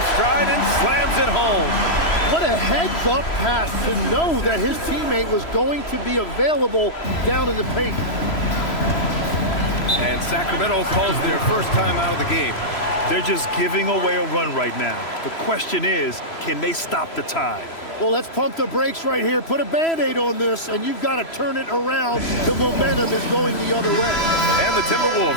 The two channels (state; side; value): late; right; 3.0 ms